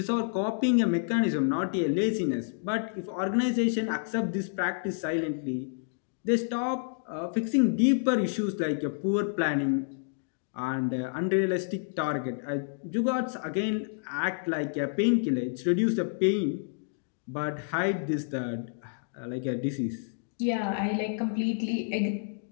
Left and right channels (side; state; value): right; silent; digital silence